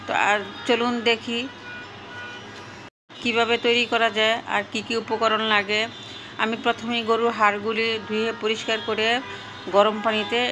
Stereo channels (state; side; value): identical; both; correlation 1.00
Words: তো আর চলুন দেখি কিভাবে তৈরি করা যায় আর কি কি উপকরণ লাগে। আমি প্রথমেই গরুর হাড়গুলি ধুয়ে পরিষ্কার করে গরম পানিতে